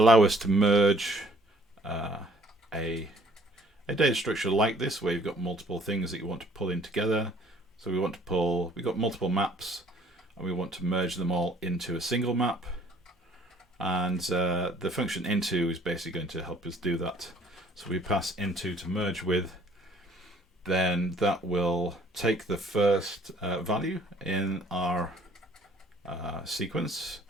us to merge a data structure like this, where you've got multiple things that you want to pull in together. So we've got multiple maps, and we want to merge them all into a single map. And the function into is basically going to help us do that. So we pass into to merge with, then that will take the first value in our sequence,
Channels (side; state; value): both; normal; correlation 0.58